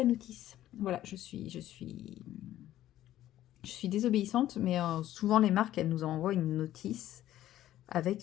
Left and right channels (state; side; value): quieter; right; 13.3 dB